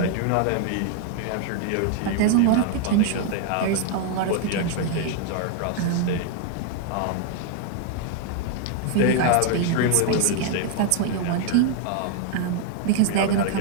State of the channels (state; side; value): different; both; correlation 0.00